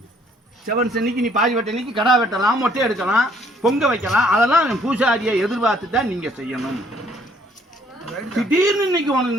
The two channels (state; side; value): normal; both; correlation 0.63